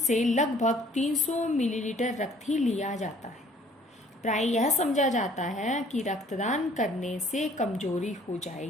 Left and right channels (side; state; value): both; normal; correlation 0.57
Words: लगभग 300 मिलीलीटर रक्त ही लिया जाता है। प्राय यह समझा जाता है कि रक्तदान करने से कमजोरी हो